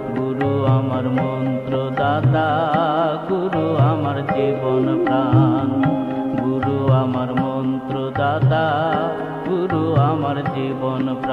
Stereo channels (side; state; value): both; identical; correlation 1.00